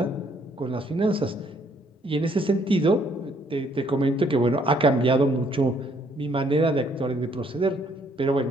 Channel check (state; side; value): normal; both; correlation 0.67